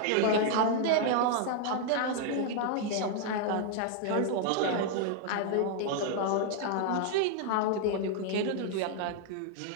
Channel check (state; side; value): different; both; correlation 0.00